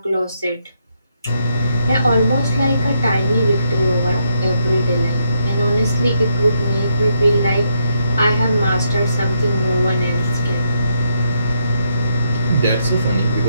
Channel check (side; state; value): both; inverted; correlation -0.78